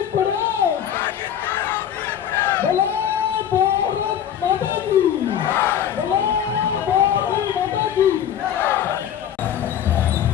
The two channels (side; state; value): right; quieter; 9.6 dB